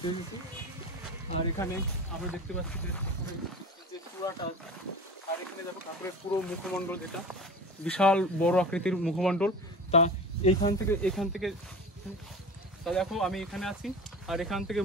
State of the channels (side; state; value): both; normal; correlation 0.34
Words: গেছি। আর এখানে আমরা দেখতে পাচ্ছি যে ঠাকুরের যে চূড়াটা আছে, আর এখানে দেখো ঠাকুরের পুরো মুখমণ্ডল, যেটা বিশাল বড় আকৃতির মুখমণ্ডল। তা এখান থেকে তা দেখো আমি এখানে আছি, আর এখান থেকে